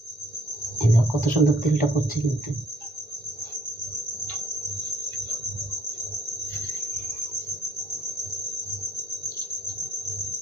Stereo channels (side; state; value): both; normal; correlation 0.63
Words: এই দেখো কত সুন্দর তেলটা পড়ছে কিন্তু।